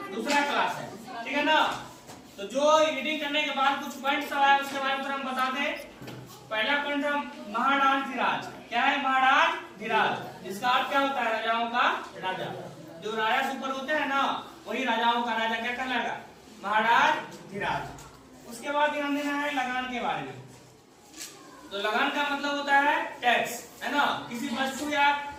दूसरा क्लास है, ठीक है ना? तो जो रीडिंग करने के बाद कुछ पॉइंट्स आया उसके बारे में हम बता दें। पहला पॉइंट था महाराज। क्या है महाराज? जिसका अर्थ क्या होता है? राजाओं का राजा। जो राजा से ऊपर होते हैं ना, वही राजाओं का राजा क्या कहलाएगा? महाराज। उसके बाद ध्यान देना है लगान के बारे में। तो लगान का मतलब होता है टैक्स, है ना? किसी वस्तु या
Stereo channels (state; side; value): identical; both; correlation 1.00